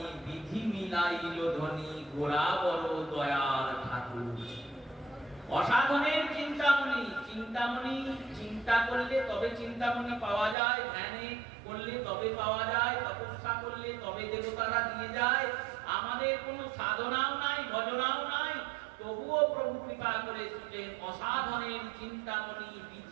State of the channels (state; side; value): drops out; left; at 10.6 s